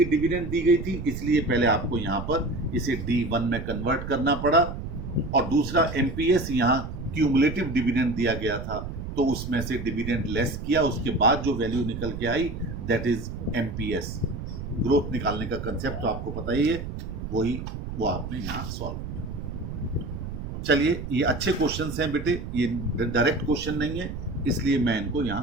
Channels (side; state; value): right; noise; rumble, 7 dB below the sound